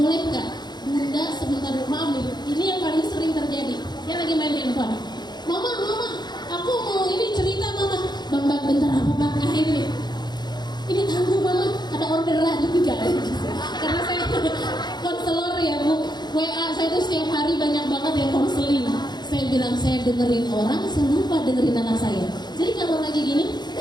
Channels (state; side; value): late; right; 0.21 ms